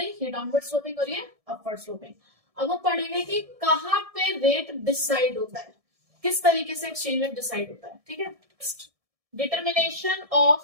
ये डाउनवर्ड स्लोपिंग और ये अपवर्ड स्लोपिंग। अब हम पढ़ेंगे कि कहाँ पे रेट डिसाइड होता है, किस तरीके से एक्सचेंज रेट डिसाइड होता है। ठीक है, determination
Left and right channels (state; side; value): late; left; 1.7 ms